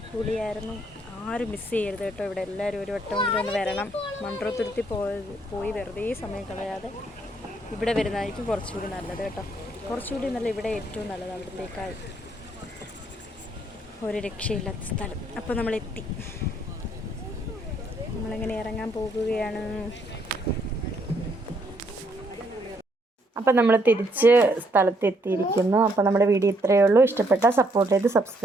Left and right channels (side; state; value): both; normal; correlation 0.71